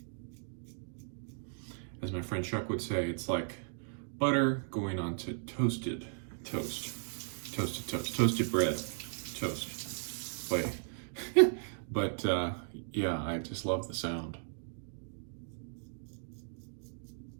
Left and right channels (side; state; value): left; silent; digital silence